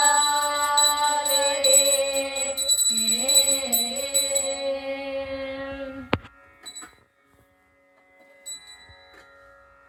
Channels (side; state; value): both; identical; correlation 1.00